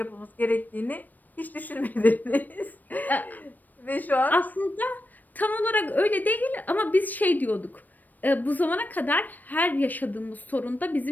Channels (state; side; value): late; right; 0.086 ms